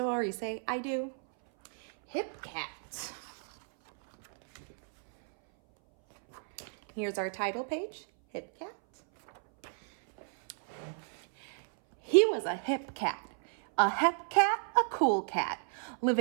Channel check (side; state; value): left; silent; 57 dB below the other